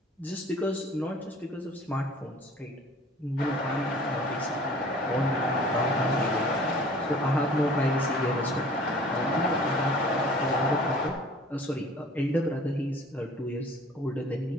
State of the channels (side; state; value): both; normal; correlation 0.49